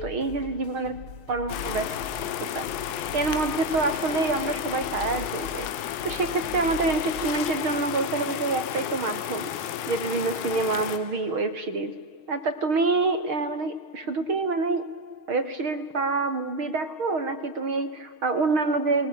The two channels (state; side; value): late; left; 6.4 ms